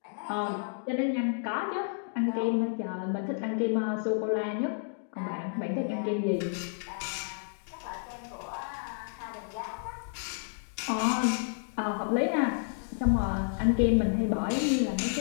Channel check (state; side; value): silent; right; digital silence